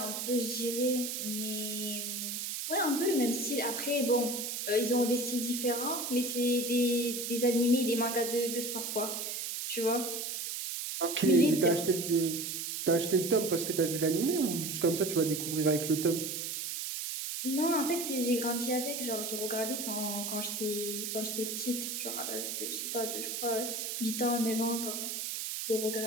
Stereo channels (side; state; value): right; noise; hiss, 4 dB below the sound